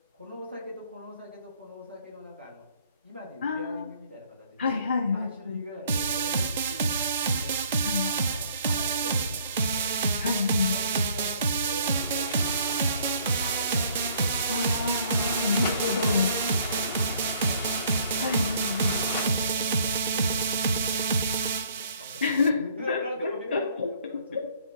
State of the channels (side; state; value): both; inverted; correlation -0.60